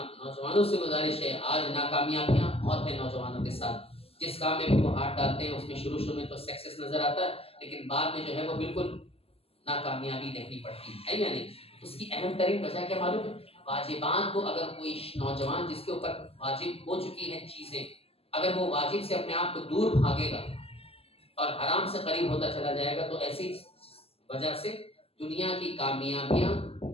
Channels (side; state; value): right; late; 0.29 ms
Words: نوجوانوں سے گزارش ہے، آج ناکامیابیاں بہت ہیں نوجوانوں کے ساتھ. جس کام میں بھی وہ ہاتھ ڈالتے ہیں اس میں شروع میں تو سکسیس نظر آتا ہے، لیکن بعد میں جو ہے وہ بالکل ناکامیابی دیکھنی پڑتی ہے یا نہیں. اس کی اہم ترین وجہ کیا معلوم ہے؟ واجبات کو اگر کوئی نوجوان جس کے اوپر واجب ہو چکی ہیں چیزیں، اگر وہ واجب سے اپنے آپ کو دور بھاگے گا اور حرام سے قریب ہوتا چلا جائے گا، تو ایسی وجہ سے دنیا کی کامیابیاں